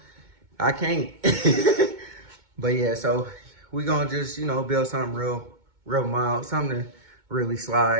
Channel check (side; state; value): left; late; 2.2 ms